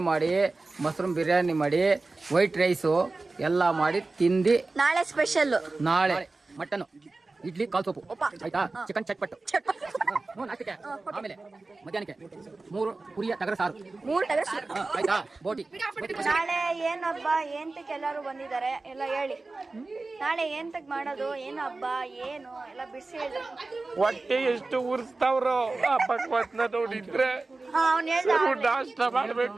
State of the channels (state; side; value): quieter; left; 3.5 dB